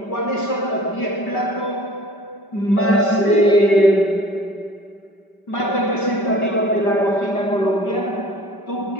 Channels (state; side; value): late; right; 5.1 ms